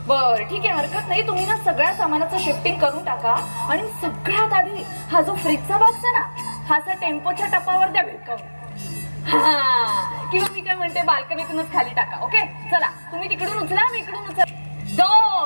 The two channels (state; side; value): inverted; both; correlation -1.00